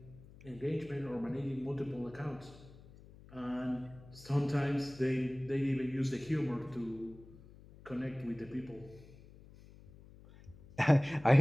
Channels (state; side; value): noise; left; hum, 21 dB below the sound